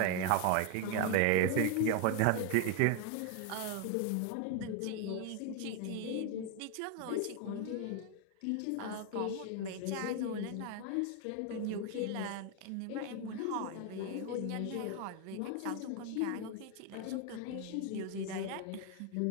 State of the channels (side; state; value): both; different; correlation 0.01